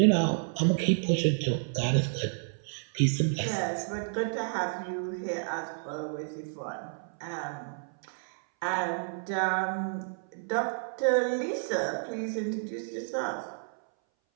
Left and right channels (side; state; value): left; silent; 57 dB below the other